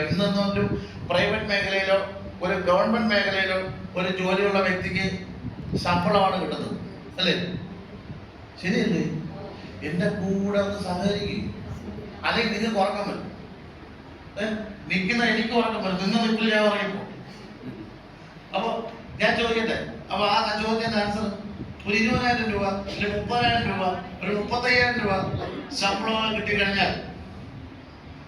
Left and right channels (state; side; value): identical; both; correlation 1.00